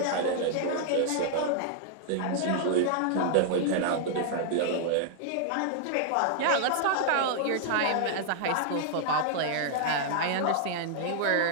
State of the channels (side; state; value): both; different; correlation -0.01